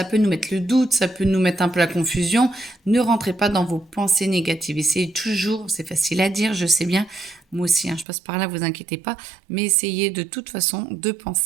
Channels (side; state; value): left; drops out; at 8.1 s